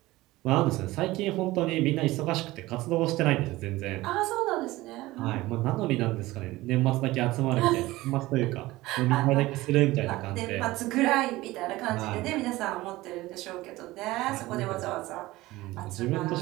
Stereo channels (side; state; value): left; quieter; 18.6 dB